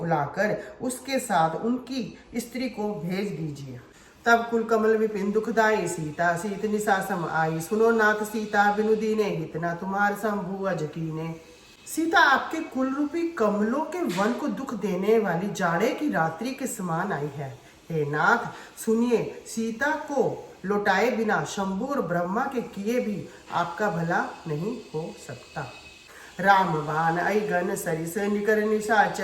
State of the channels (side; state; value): both; identical; correlation 1.00